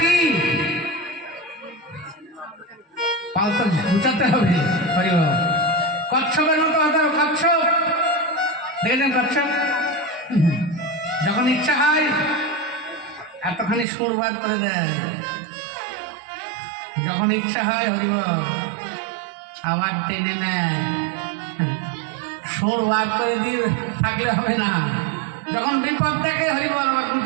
কি? পাল তো গুছাতে হবে। কচ্ছপের মতো হতে হবে। কচ্ছপ দেখেছেন? কচ্ছপ যখন ইচ্ছা হয় এতখানি সুর বার করে দেয়, যখন ইচ্ছা হয় হরিব আবার টেনে নেয়। সুর বার করে দিয়ে থাকলে হবে না। যখন বিপদ দেখে হরিবল বা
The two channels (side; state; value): left; drops out; at 13.9 s